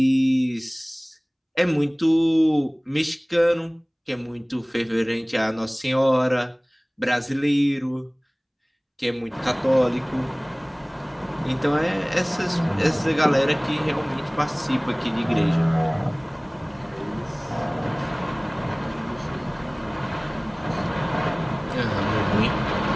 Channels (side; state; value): both; identical; correlation 1.00